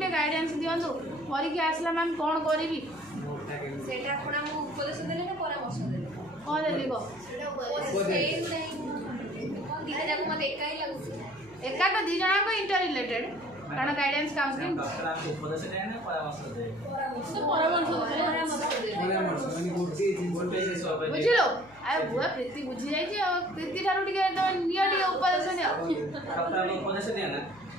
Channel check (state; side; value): noise; left; hum, 26 dB below the sound